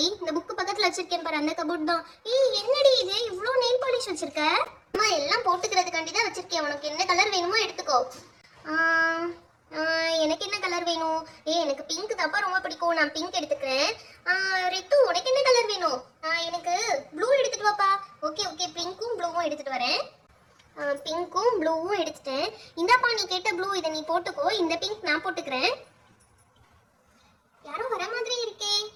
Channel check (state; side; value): identical; both; correlation 1.00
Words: இந்த புக்கு பக்கத்துல வச்சிருக்கேன் பாரு, அந்த கபோர்ட் தான். என்னடி இது இவ்ளோ நெயில் பாலிஷ் வச்சிருக்க? அம்மா எல்லாம் போட்டுக்கிறதுக்காண்டி தான் வச்சிருக்கேன். உனக்கு என்ன கலர் வேணுமோ எடுத்துக்கோ. எனக்கு என்ன கலர் வேணும்? எனக்கு பிங்க் தாப்பா ரொம்ப பிடிக்கும், நான் பிங்க் எடுத்துக்கிறேன். ரித்து, உனக்கு என்ன கலர் வேணும்? எனக்கு ப்ளூ எடுத்துட்டு வாப்பா. ஓகே ஓகே, பிங்க்கும் ப்ளூவும் எடுத்துட்டு வரேன். பிங்க்கும் ப்ளூவும் எடுத்துட்டேன். இந்தாப்பா, நீ கேட்ட ப்ளூ, இதை நீ போட்டுக்கோ. இந்த பிங்க் நான் போட்டுக்கிறேன். யாரோ வர மாதிரி இருக்கே.